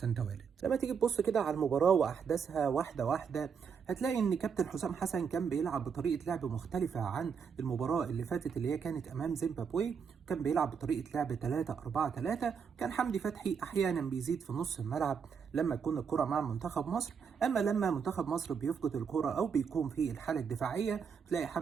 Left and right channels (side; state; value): left; quieter; 6.5 dB